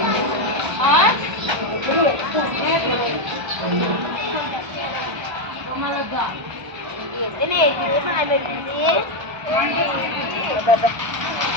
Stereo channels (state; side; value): late; left; 1.3 ms